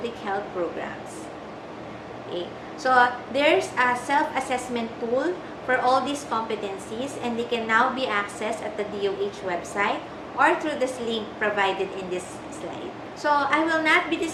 health programs. Okay. So, there's a self-assessment tool for all these competencies, and they can now be accessed at the DOH website or through this link provided in this slide. So, I will not be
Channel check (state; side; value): identical; both; correlation 1.00